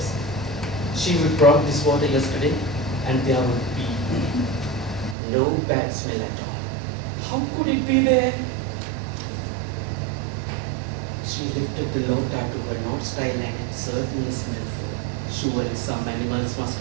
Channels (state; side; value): drops out; left; at 5.2 s